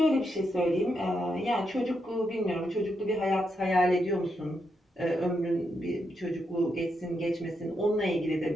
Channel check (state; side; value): normal; both; correlation 0.82